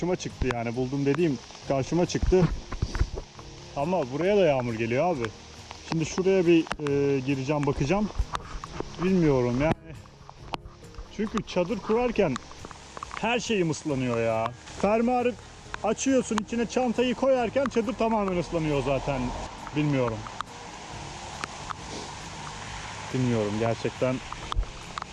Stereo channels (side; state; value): both; identical; correlation 1.00